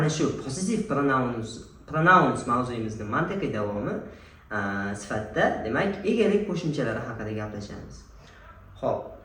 shu possessive pronouns mavzuyimizning mantiqiy davomi sifatida demak egalik qo'shimchalari haqida gaplashamiz. Xo'p,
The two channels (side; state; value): both; identical; correlation 1.00